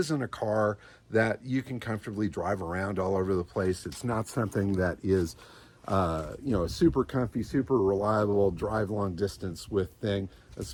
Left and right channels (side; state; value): both; identical; correlation 1.00